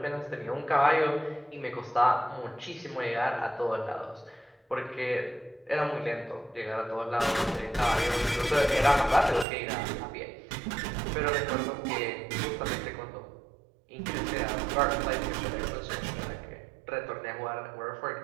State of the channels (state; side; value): drops out; left; at 9.5 s